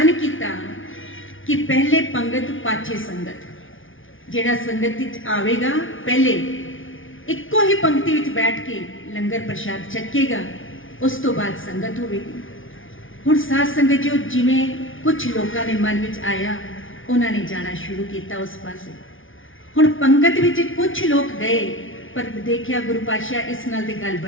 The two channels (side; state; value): right; late; 0.57 ms